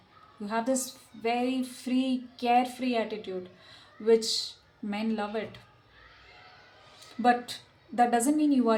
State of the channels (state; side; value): identical; both; correlation 1.00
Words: You have this very free, carefree attitude, which men love it. But that doesn't mean you